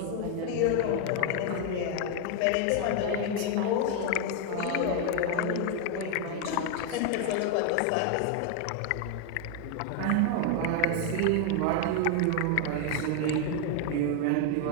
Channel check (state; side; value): different; both; correlation 0.00